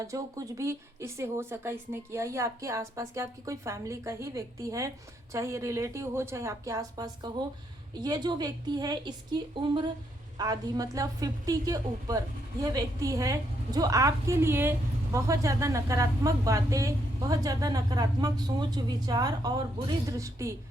जो कुछ भी इससे हो सका इसने किया। ये आपके आसपास के, आपकी कोई फैमिली का ही व्यक्ति है, चाहे ये रिलेटिव हो, चाहे आपके आसपास का हो। ये जो व्यक्ति है इसकी उम्र आधी मतलब 50 के ऊपर यह व्यक्ति है, जो आपके लिए बहुत ज़्यादा नकारात्मक बातें, बहुत ज़्यादा नकारात्मक सोच विचार और बुरी दृष्टि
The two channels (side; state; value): both; normal; correlation 0.75